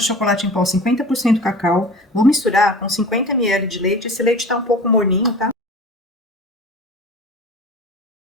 de chocolate em pó, 50% cacau. Vou misturar com 50 ml de leite. Esse leite tá um pouco morninho, tá?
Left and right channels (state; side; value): normal; both; correlation 0.38